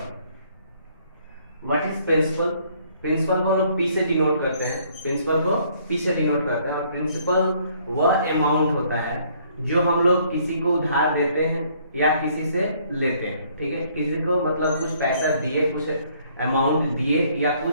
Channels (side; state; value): both; inverted; correlation -0.64